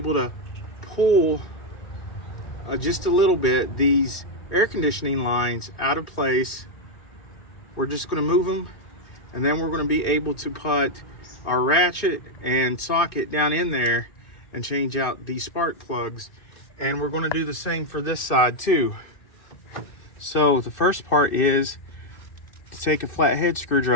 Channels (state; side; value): late; right; 2.5 ms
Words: to pull just a little bit these air conditioning lines out of place. We're just going to move them, and then we're going to be able to put our ratchet and socket down in there and change out these spark plugs. And we're going to do the same for this side too. So the first part is to take a flathead